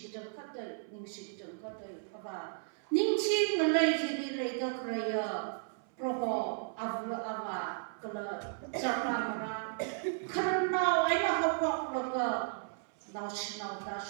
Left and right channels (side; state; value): left; silent; 55 dB below the other